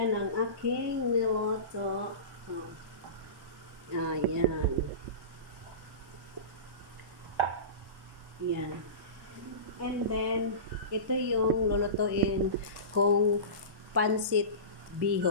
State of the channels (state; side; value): late; left; 1.1 ms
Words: ang aking niluto. Yan. Yan. And then, ito yung lulutuin kong pansit